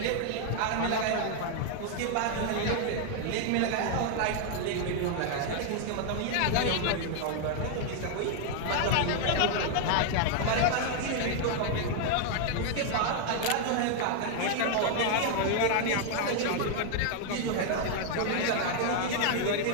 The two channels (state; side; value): different; both; correlation 0.00